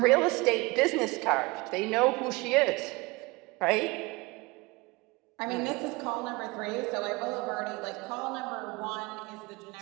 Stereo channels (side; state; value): left; quieter; 24.1 dB